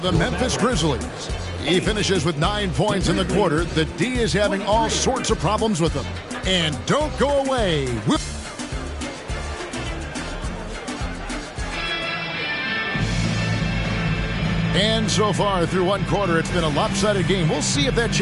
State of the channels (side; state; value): both; identical; correlation 1.00